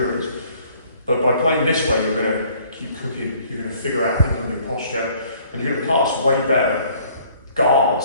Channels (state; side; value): inverted; both; correlation -0.59